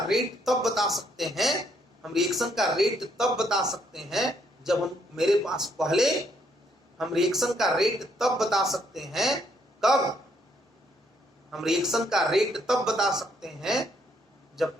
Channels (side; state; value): both; normal; correlation 0.71